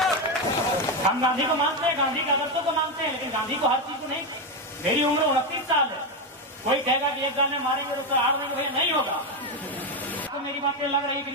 हम गांधी को मानते हैं, गांधी के आदर्शों को मानते हैं, लेकिन गांधी को हर चीज को नहीं। मेरी उम्र 29 साल है, कोई कहेगा कि एक गाने मारेंगे तो उससे आड़ देंगे, भैया नहीं होगा। तो मेरी बातें लग रही कि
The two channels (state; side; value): normal; both; correlation 0.09